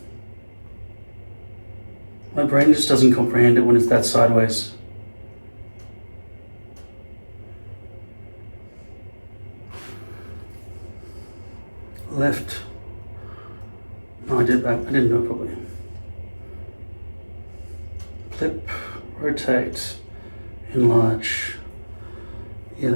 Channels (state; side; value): inverted; both; correlation -1.00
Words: My brain just doesn't comprehend it when it's that sideways. Left. No, I did back. I didn't do it properly. Flip, rotate, enlarge. Yeah,